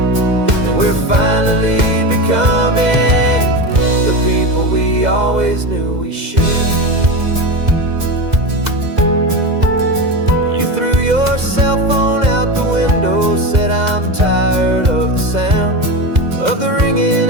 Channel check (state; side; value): late; left; 2.0 ms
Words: and we're finally becoming the people we always knew we should. You threw your cell phone out the window, said I'm tired of the sound of the ringing